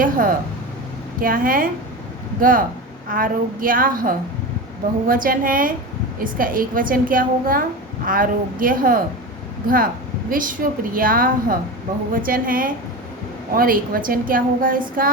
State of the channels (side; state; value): both; normal; correlation 0.25